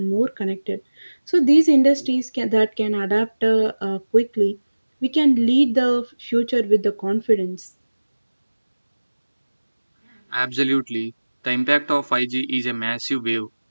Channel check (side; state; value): both; inverted; correlation -1.00